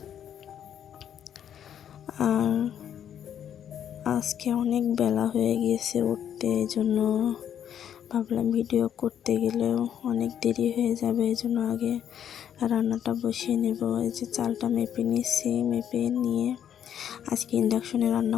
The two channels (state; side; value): quieter; right; 9.4 dB